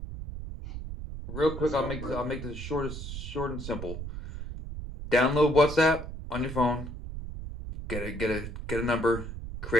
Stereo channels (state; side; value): noise; right; rumble, 8 dB below the sound